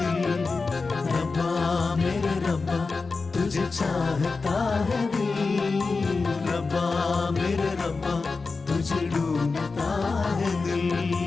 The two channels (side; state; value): right; quieter; 4.2 dB